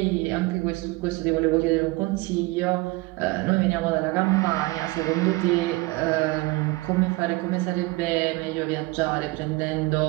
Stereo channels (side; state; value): left; quieter; 22.2 dB